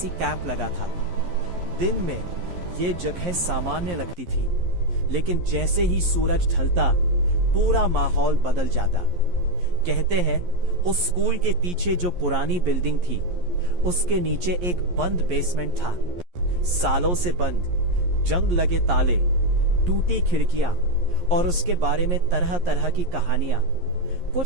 कैंप लगा था। दिन में ये जगह सामान्य लगती थी, लेकिन जैसे ही सूरज ढलता पूरा माहौल बदल जाता। कहते हैं उस स्कूल के पीछे जो पुरानी बिल्डिंग थी, उसके नीचे एक बंद बेसमेंट था। सालों से बंद, जंग लगे ताले, टूटी खिड़कियां और उसके बारे में तरह तरह की कहानियां।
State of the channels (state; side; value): late; left; 11 ms